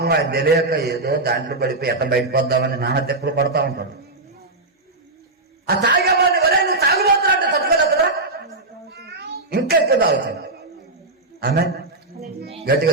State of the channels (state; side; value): quieter; left; 3.0 dB